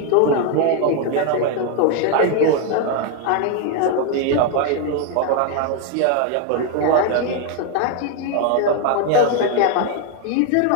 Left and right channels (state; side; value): different; both; correlation 0.01